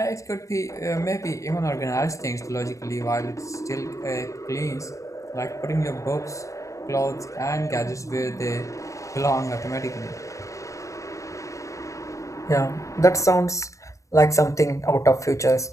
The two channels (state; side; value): late; right; 0.15 ms